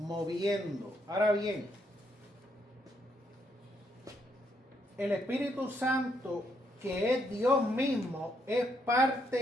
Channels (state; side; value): normal; both; correlation 0.75